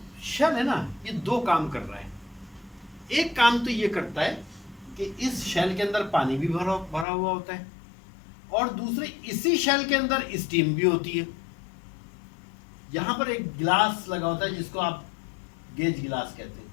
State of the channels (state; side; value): drops out; right; at 7.1 s